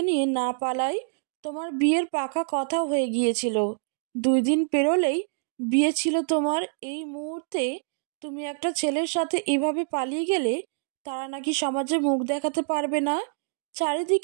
নিয়ে না পালাই। তোমার বিয়ের পাকা কথা হয়ে গিয়েছিল। 2 দিন পেরোলেই বিয়ে ছিল তোমার। এই মুহূর্তে তুমি একটা ছেলের সাথে এভাবে পালিয়ে গেলে তারা নাকি সমাজে মুখ দেখাতে পারবে না।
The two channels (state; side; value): silent; left; digital silence